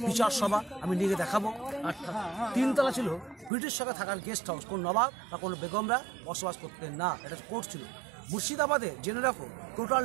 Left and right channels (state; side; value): drops out; left; at 3.5 s